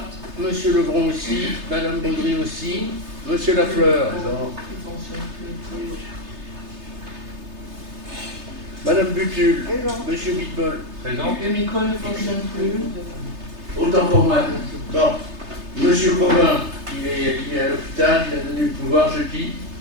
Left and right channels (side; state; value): left; late; 3.3 ms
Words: Monsieur Lebron aussi. Madame Baudry aussi. Monsieur Lafleur. Madame Butul. Monsieur Bitbol. Présent. Le micro ne fonctionne plus. Autant pour moi. Bon. Monsieur Covin, il est à l'hôpital, il a donné le pouvoir, je dis,